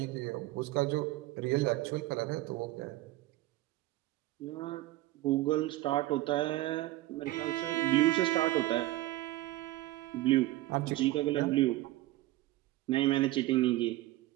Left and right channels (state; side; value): quieter; left; 17.2 dB